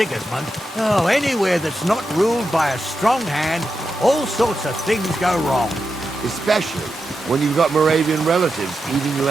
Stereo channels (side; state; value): both; normal; correlation 0.88